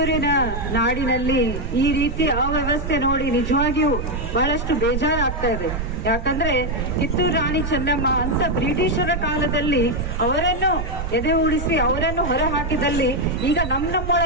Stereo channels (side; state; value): right; noise; rumble, 5 dB below the sound